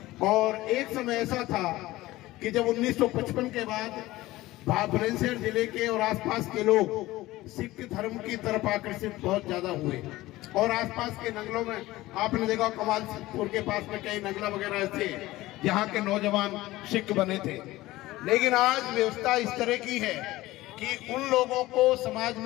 और एक समय ऐसा था कि जब 1955 के बाद बुलंदशहर जिले के और आसपास के लोग सिख धर्म की तरफ आकर्षित बहुत ज्यादा हुए, और आसपास के नगलों में आपने देखा कमालपुर के पास में कई नगला वगैरह ऐसे यहाँ के नौजवान सिख बने थे। लेकिन आज व्यवस्था इस तरह की है कि उन लोगों को समाज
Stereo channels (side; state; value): right; quieter; 17.8 dB